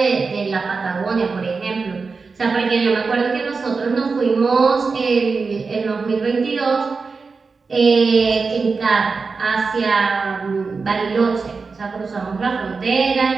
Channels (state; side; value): quieter; left; 4.5 dB